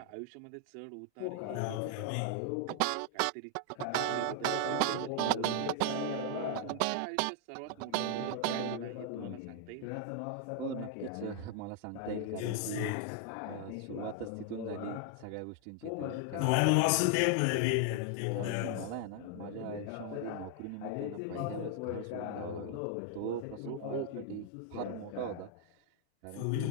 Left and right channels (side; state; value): both; different; correlation 0.00